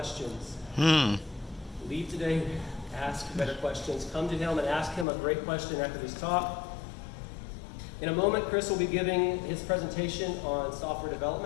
Leave today, ask better questions. Come to him and ask him a great question after this talk. In a moment, Chris will be giving his presentation on software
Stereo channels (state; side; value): drops out; right; at 5.1 s